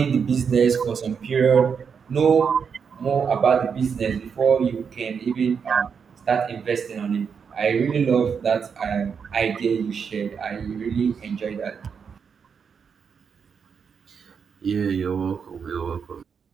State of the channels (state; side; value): quieter; left; 6.4 dB